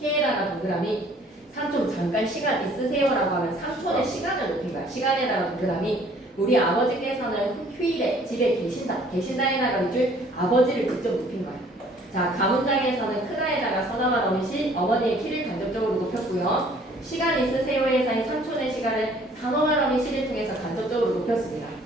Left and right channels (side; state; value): both; normal; correlation 0.57